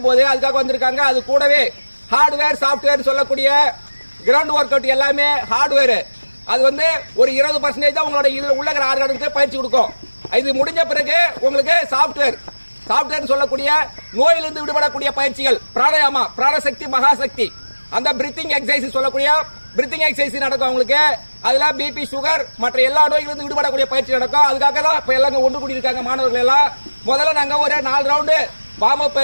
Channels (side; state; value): both; inverted; correlation -1.00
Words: போது அதுக்காக வந்திருக்காங்க. அது கூடவே ஹார்ட்வேர் சாஃப்ட்வேர் சொல்லக்கூடிய கிரவுண்ட் ஒர்க் அவுட் எல்லாமே ஹார்ட்வேர். அது வந்து ஒரு 20% தான் உங்களோட இதுல உள்ள ஆர்கானுக்கு பயிற்சி கொடுக்கும். இது முடிஞ்ச பிறகு உங்களுக்கு சாஃப்ட்வேர் சொல்லக்கூடிய நோயிலிருந்து விடுபடக்கூடிய பயிற்சிகள், பிராணாயாமா, பிராணசக்தி, மகாசக்தி, அந்த பிரீத்திங் எக்ஸசைஸ் சொல்லக்கூடிய பிரீத்திங் எக்ஸசைஸ் நடக்கும் உங்களுக்கு. அதுல பிபி, சுகர் மற்ற எல்லா நோய்களிலிருந்து விடுபடக்கூடிய பயிற்சி நடக்கும். அதுக்காக தான் இப்ப எல்லாம் ஒன்று கூடி இருக்காங்க மாணவர்கள் எல்லாம். முதல்ல நாங்க ஒரு 4 ரவுண்டு வார்ம் அப்